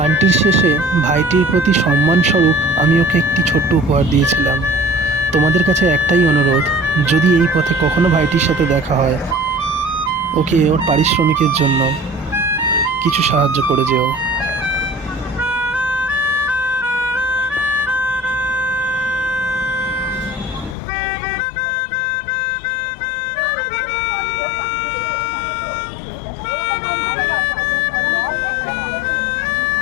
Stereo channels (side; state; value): right; drops out; at 20.8 s